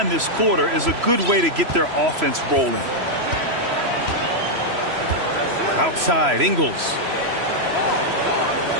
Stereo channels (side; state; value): left; late; 3.0 ms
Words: this quarter is a good way to get their offense rolling. Outside, Ingles.